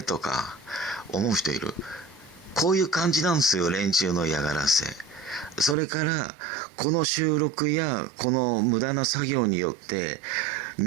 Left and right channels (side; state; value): left; drops out; at 5.8 s